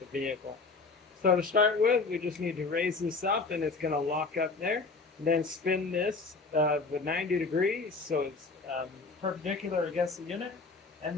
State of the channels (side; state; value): right; quieter; 4.0 dB